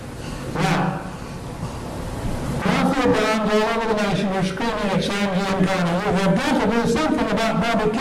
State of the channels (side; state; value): both; identical; correlation 1.00